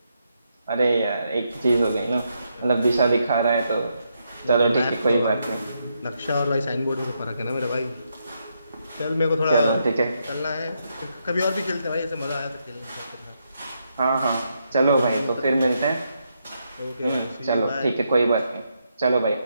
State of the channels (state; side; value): inverted; both; correlation -0.80